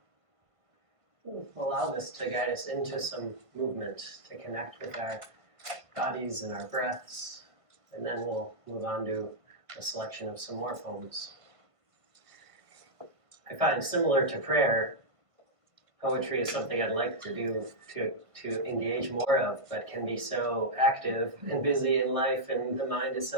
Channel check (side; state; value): left; late; 1.5 ms